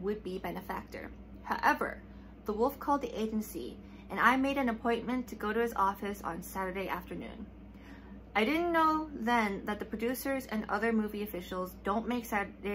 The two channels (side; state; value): both; identical; correlation 1.00